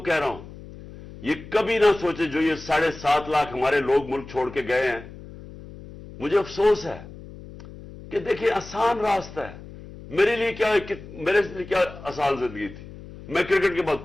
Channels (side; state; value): left; noise; hum, 16 dB below the sound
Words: کہہ رہا ہوں, یہ کبھی نہ سوچے جو یہ 7.5 لاکھ ہمارے لوگ ملک چھوڑ کے گئے ہیں. مجھے افسوس ہے کہ دیکھیں آسان راستہ ہے. میرے لیے کیا آسان زندگی تھی. میں کرکٹ کے بعد